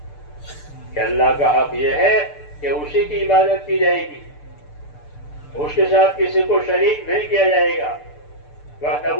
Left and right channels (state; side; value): late; right; 6.8 ms